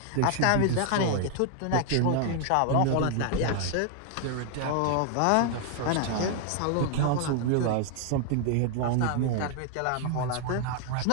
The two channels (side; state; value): both; different; correlation 0.00